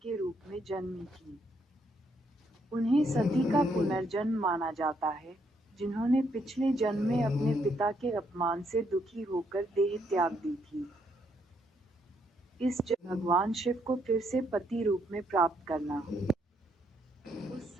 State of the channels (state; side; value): normal; both; correlation 0.73